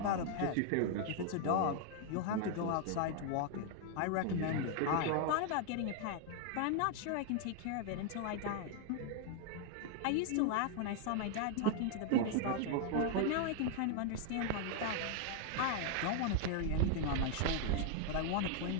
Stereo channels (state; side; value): different; both; correlation 0.00